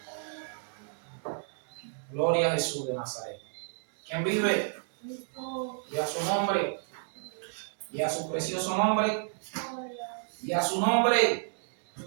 Gloria a Jesús de Nazaret. ¿Quién vive? Y a su nombre. Y a su precioso nombre. Y a su nombre.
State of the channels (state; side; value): silent; left; digital silence